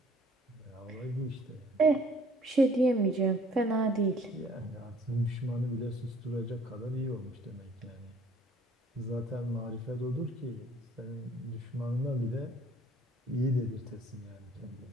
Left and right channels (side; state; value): both; normal; correlation 0.56